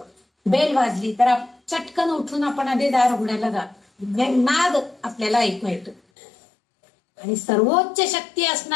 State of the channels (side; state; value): right; drops out; at 6.0 s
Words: बेल वाजली तर चटकन उठून आपण आधी दार उघडायला जातो. नाद आपल्याला ऐकू येतो. आणि सर्वोच्च शक्ती